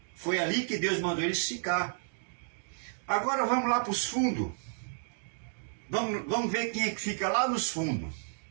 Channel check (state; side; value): silent; left; digital silence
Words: Foi ali que Deus mandou eles ficar. Agora vamos lá para os fundos. Vamos ver quem é que fica lá nos fundos.